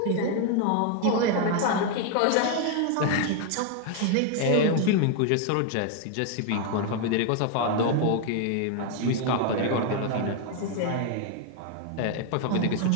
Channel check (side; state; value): both; different; correlation 0.01